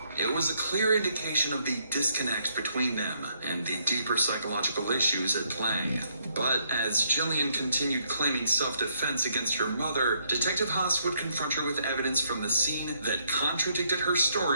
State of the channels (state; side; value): inverted; both; correlation -0.73